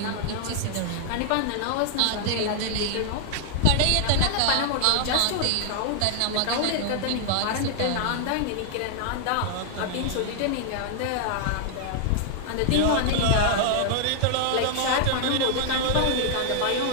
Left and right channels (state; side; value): different; both; correlation 0.00